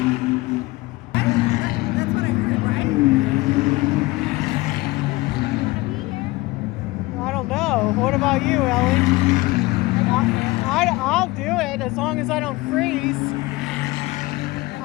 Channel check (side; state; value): right; quieter; 21.1 dB